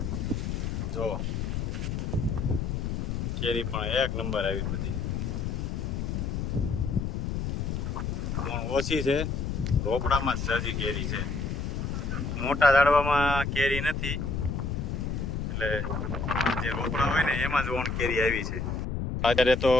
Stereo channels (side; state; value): left; noise; rumble, 2 dB below the sound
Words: જો કેરી પણ એક નંબર આવી બધી. પણ ઓછી છે, રોપડામાં જ જાજી કેરી છે. મોટા ઝાડવામાં કેરી નથી, એટલે જે રોપડા હોય ને એમાં જ ઓણ કેરી આવી છે. અત્યારે તો